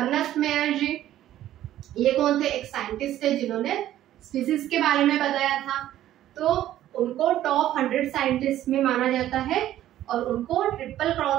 मेयर जी, ये कौन थे, एक साइंटिस्ट थे जिन्होंने स्पीसीज के बारे में बताया था। तो उनको टॉप 100 साइंटिस्ट में माना जाता है और उनको ट्रिपल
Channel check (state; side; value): quieter; left; 12.9 dB